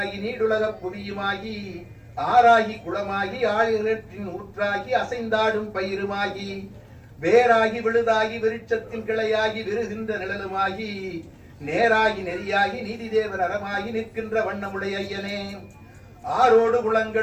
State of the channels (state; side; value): identical; both; correlation 1.00